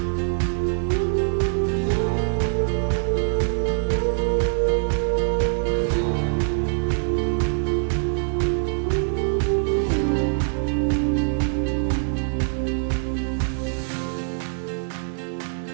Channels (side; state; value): left; silent; digital silence